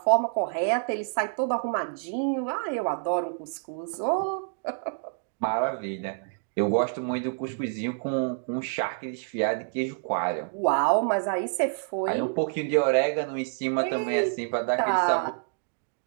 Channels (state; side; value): silent; left; digital silence